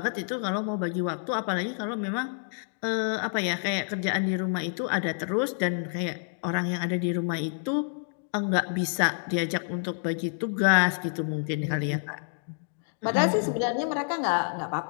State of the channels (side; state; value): right; silent; digital silence